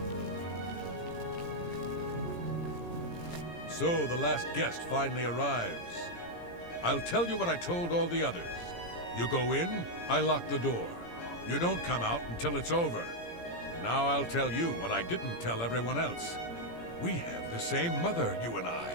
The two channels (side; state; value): right; late; 17 ms